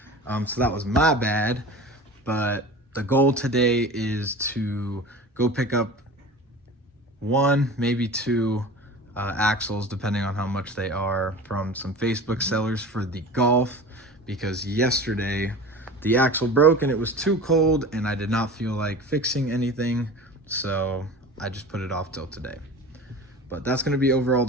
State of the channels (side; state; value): both; normal; correlation 0.36